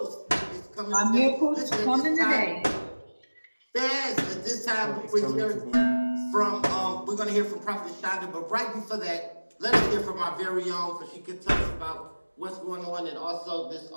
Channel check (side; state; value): both; inverted; correlation -1.00